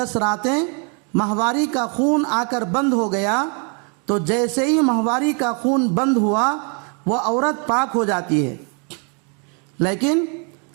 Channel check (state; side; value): quieter; left; 37.8 dB